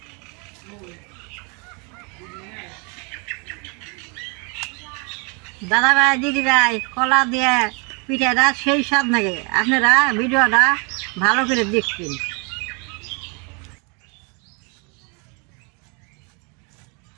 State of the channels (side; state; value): left; quieter; 33.2 dB